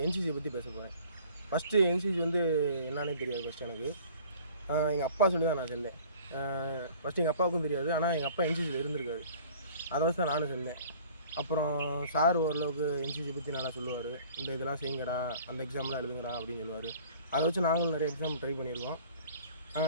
என்சிசியை பற்றி பேச போகிறேன். ஃபஸ்ட்டு என்சிசி வந்து என்னன்னே தெரியாது. ஃபஸ்ட்டு எனக்கு எங்கள் அப்பா சொல்லி தான் நான் சேர்ந்தேன். ஃபஸ்ட்டு எங்கள் அப்பாவுக்கும் தெரியாது, ஆனால் எங்கள் அப்பா என்சிசியில் இருந்திருக்காரு. அதை வச்சு தான் நானும் சேர்ந்தேன். அப்புறம் சார் ஓரளவுக்கு என்சிசி பற்றி நல்லா சொல்லுவார். இந்த இதெல்லாம் செய்யுங்கடா, அந்த எக்ஸாம்லாம் எழுதுங்கடா அப்படின்னு சொல்லுவார். அதை வச்சு நாங்களும் நிறைய எக்ஸாம் ட்ரை பண்ணியிருக்கோம்.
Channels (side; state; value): both; inverted; correlation -0.50